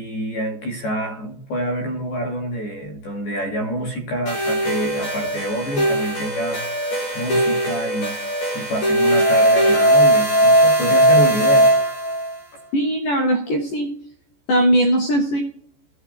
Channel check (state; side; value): late; right; 14 ms